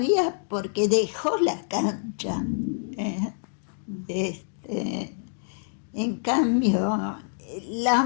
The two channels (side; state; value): right; silent; digital silence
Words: porque dejó la cancha. En cambio,